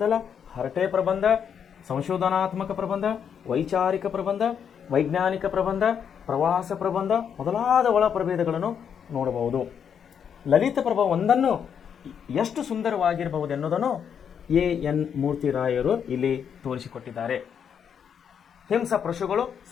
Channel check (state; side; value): quieter; right; 7.7 dB